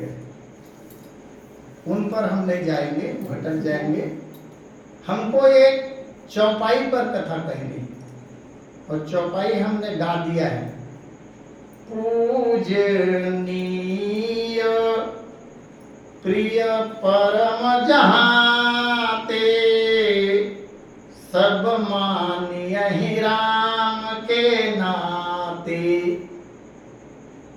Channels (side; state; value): both; identical; correlation 1.00